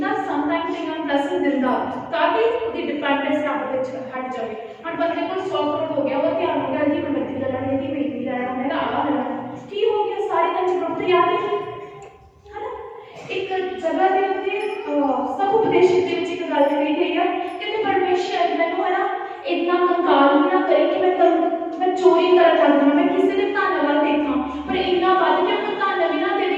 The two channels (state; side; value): identical; both; correlation 1.00